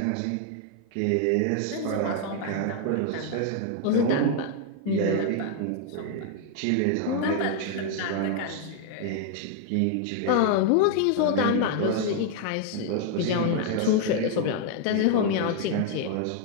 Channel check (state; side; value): different; both; correlation 0.00